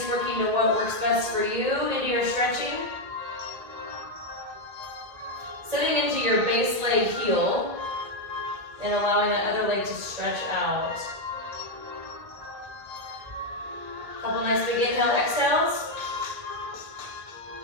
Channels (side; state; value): left; late; 2.0 ms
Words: working to what works best for you into your stretching. Sitting into your base leg heel and allowing that other leg to stretch out. Couple nice big inhale, exhales.